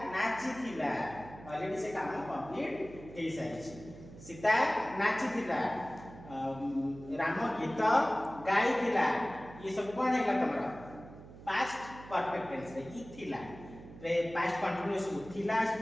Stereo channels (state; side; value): noise; right; hum, 16 dB below the sound